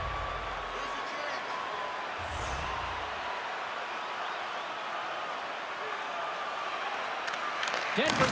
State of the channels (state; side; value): identical; both; correlation 1.00